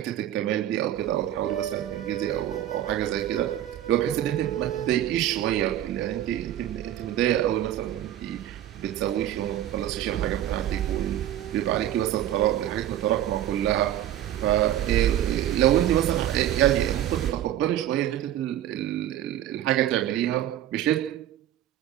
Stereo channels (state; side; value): quieter; left; 12.2 dB